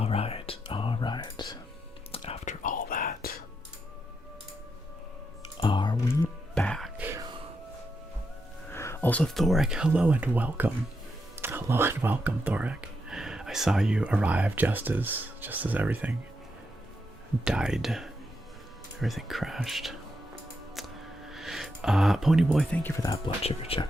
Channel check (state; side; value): normal; both; correlation 0.83